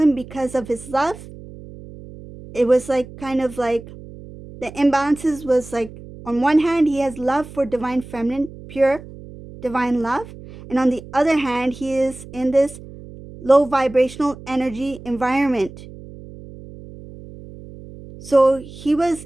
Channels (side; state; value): right; noise; hum, 16 dB below the sound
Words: because of his love. It was like kind of like the imbalances was like, on one hand, he has love for Divine Feminine, pure divine love. And on the other hand, he is in this low vibrational energy environment. So he